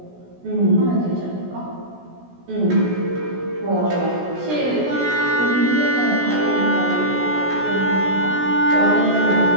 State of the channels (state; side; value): late; left; 16 ms